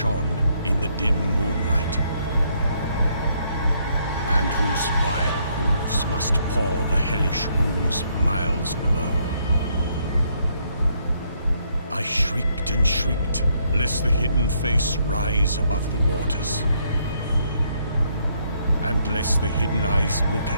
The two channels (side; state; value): both; inverted; correlation -0.72